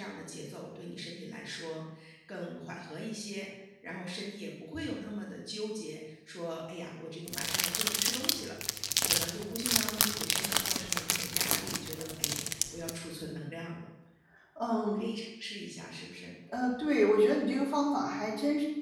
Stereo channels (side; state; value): both; identical; correlation 1.00